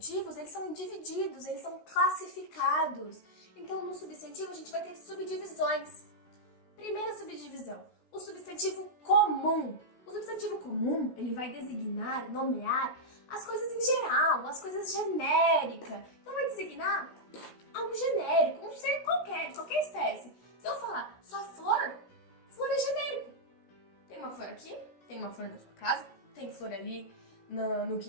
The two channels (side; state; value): right; late; 16 ms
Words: eles são divididos, eles são classificados. Então, no substantivo, a gente vai ter subdivisões. Primeira subdivisão, o substantivo comum. O substantivo comum, ele vai designar, nomear as coisas em geral, as coisas genéricas. Então, vai designar algo genérico, um ser qualquer, de qualquer espécie. Se eu falar só flor, flor é genérico. Tem uma flor aqui, tem uma flor na sua casa, tem flor ali no